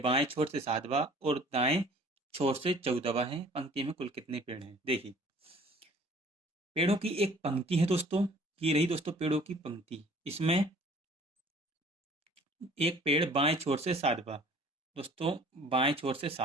बाएं छोर से 7वां और दाएं छोर से 14वां है। पंक्ति में कुल कितने पेड़ हैं। देखिए पेड़ों की एक पंक्ति है दोस्तों, ये रही दोस्तों पेड़ों की पंक्ति, इसमें एक पेड़ बाएं छोर से 7वां, दोस्तों बाएं छोर से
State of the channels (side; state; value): both; normal; correlation 0.51